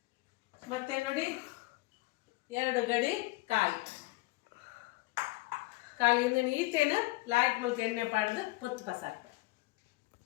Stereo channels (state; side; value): quieter; right; 21.6 dB